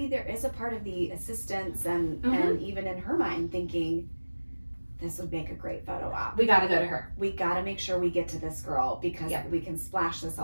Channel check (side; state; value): both; inverted; correlation -1.00